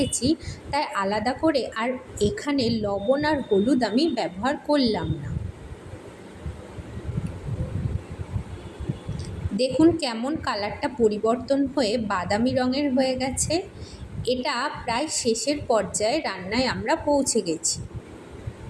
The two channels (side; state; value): both; identical; correlation 1.00